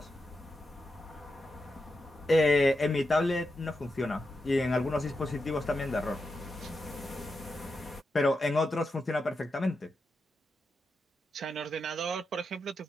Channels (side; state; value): both; normal; correlation 0.87